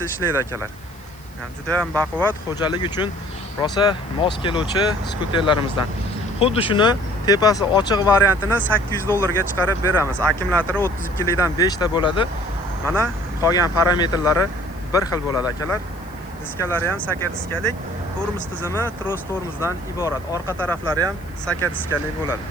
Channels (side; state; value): left; noise; hiss, 26 dB below the sound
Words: ishlaydi akalar. Yani juda ham baquvvat, xo'jalik uchun rosa mos keluvchi skuterlarimizdan. Xuddi shuni tepasi ochiq variantini 800 dollarga chiqarib beramiz. Akkumulyatori 32 likdan 5 ta bo'ladi. Mana qolgan parametrlari bir xil bo'ladi akalar. Diskalari ham saka diskalik, tormoz tizimi tros tormozdan iborat. Orqa taraflari ham saka diskalik bo'ladi.